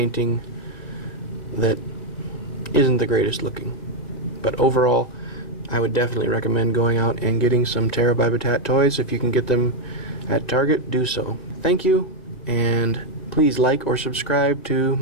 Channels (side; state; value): right; late; 1.9 ms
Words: that isn't the greatest looking. But overall, I would definitely recommend going out and getting some Terra by Battat toys. If you can get them at Target, do so. Thank you, and please like or subscribe to